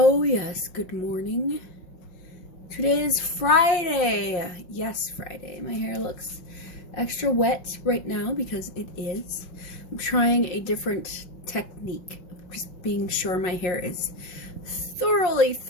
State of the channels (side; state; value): right; late; 5.4 ms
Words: yes, good morning. Today is Friday. Yes, Friday. My hair looks extra wet right now because it is. I'm trying a different technique. Just being sure my hair is